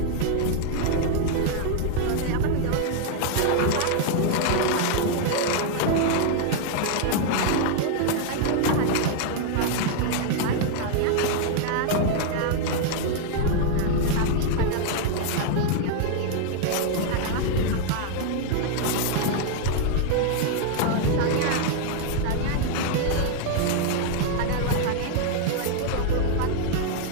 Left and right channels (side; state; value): both; different; correlation 0.00